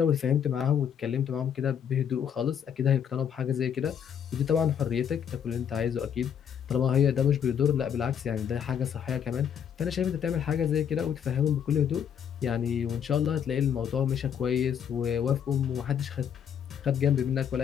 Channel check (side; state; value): right; quieter; 8.3 dB